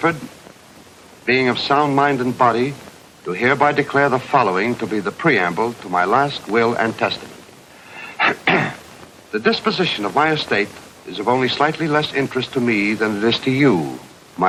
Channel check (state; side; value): identical; both; correlation 1.00